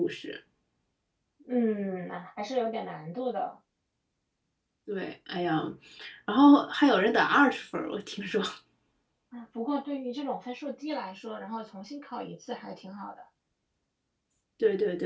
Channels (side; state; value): both; identical; correlation 1.00